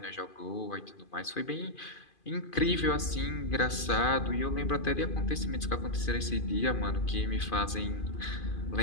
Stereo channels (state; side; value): late; right; 2.5 ms